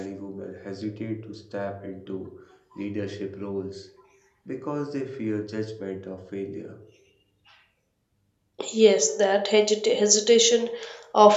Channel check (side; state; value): both; identical; correlation 1.00